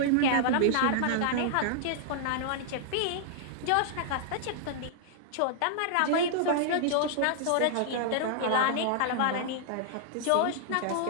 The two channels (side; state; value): both; different; correlation -0.01